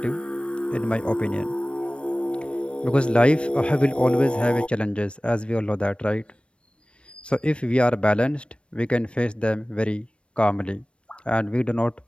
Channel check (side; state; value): right; late; 0.059 ms